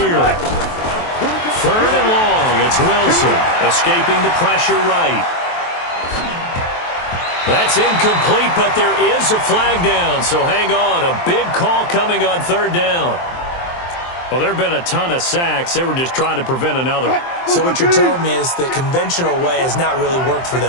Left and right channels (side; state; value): right; late; 23 ms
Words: 3rd and long. It's Wilson escaping the pressure right. That's incomplete, but there is a flag down, so hang on. A big call coming on 3rd down. Well, there have been a ton of sacks. They were just trying to prevent another. So what you're telling me is the conventional way has not really worked for